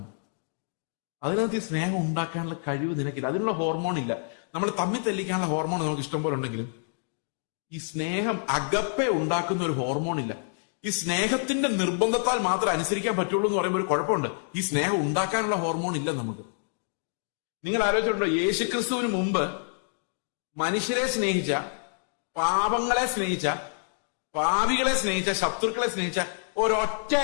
അതിനകത്ത് ഈ സ്നേഹം ഉണ്ടാക്കാനുള്ള കഴിവ് നിനക്കില്ല. അതിനുള്ള ഹോർമോൺ ഇല്ല. നമ്മൾ തമ്മിൽ തെല്ലിക്കാനുള്ള ഹോർമോൺ നമുക്ക് ഇഷ്ടം പോലെ ഉണ്ടെങ്കിലും ഈ സ്നേഹം അകപ്പെ ഉണ്ടാക്കുന്ന ഒരു ഹോർമോൺ ഇല്ല. ഈ സ്നേഹത്തിന്റെ നിർബന്ധത്താൽ മാത്രം അനുസരിക്കാൻ പറ്റുള്ളൂ എന്ന് പറയുമ്പോൾ ഒരു കുഴപ്പമുണ്ട്. ഈ സ്നേഹം ഉണ്ടാക്കാനുള്ള ഹോർമോൺ ഇല്ല നമുക്ക്. നിങ്ങൾ ആലോചിച്ചിട്ടുണ്ടോ, യേശുക്രിസ്തുവിന് മുമ്പ് മനുഷ്യരെ സ്നേഹിച്ച, പാപങ്ങളെ സ്നേഹിച്ച, പാപികളെ സ്നേഹിച്ച, ശത്രുക്കളെ സ്നേഹിച്ച ഒരൊറ്റ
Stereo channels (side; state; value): right; silent; digital silence